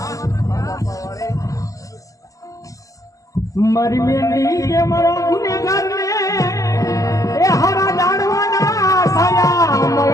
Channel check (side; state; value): right; late; 0.16 ms